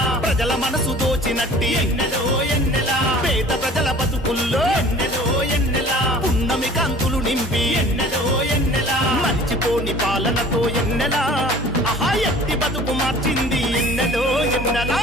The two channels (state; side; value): normal; both; correlation 0.47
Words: ప్రజల మనసు దోచినట్టి ఎన్నెలో ఎన్నెల పేద ప్రజల బతుకుల్లో ఎన్నెలో ఎన్నెల పున్నమి కాంతులు నింపి ఎన్నెలో ఎన్నెల మర్చిపోని పాలనతో ఎన్నెల ఆహా ఎత్తి బతుకు మార్చింది ఎన్నెలో ఎన్నెల